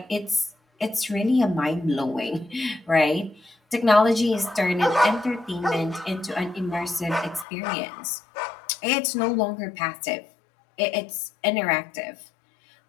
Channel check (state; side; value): drops out; right; at 7.5 s